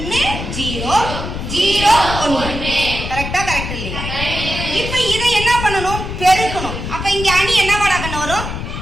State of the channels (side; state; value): left; noise; rumble, 6 dB below the sound